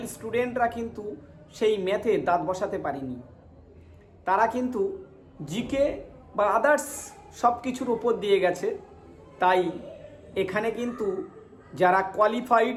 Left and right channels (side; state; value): both; identical; correlation 1.00